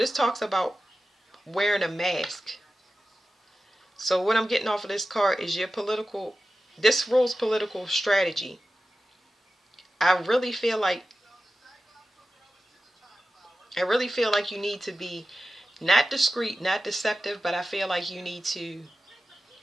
talks about wearing a mask. So what I'm getting off of this card is this rules political strategy. I really feel like you need to be not discreet, not deceptive, but I feel like you need to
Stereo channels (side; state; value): both; normal; correlation 0.94